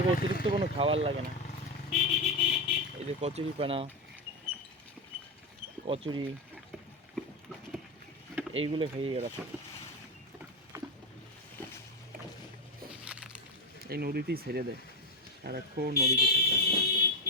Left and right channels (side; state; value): both; normal; correlation 0.12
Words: অতিরিক্ত কোনো খাবার লাগে না। এই যে কচুরি পানা, কচুরি এইগুলো খাইয়ে এরা সব এই নদীতেই ছেড়ে দেয়, সারাক্ষণ নদীতে থাকে।